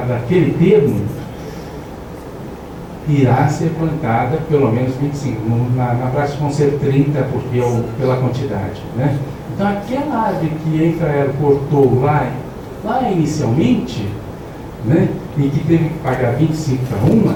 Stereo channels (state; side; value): identical; both; correlation 1.00